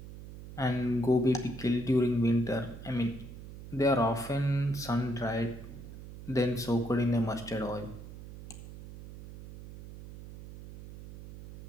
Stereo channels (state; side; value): noise; right; hum, 14 dB below the sound